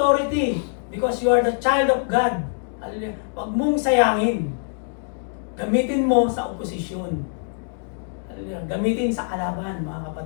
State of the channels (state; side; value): silent; right; digital silence